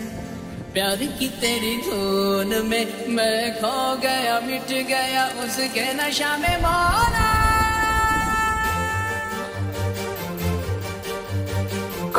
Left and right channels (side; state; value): both; identical; correlation 1.00